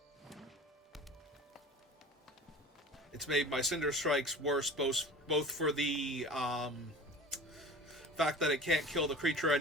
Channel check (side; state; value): both; normal; correlation 0.39